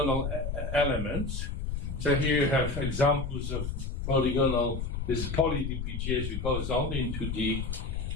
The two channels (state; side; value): noise; left; rumble, 3 dB below the sound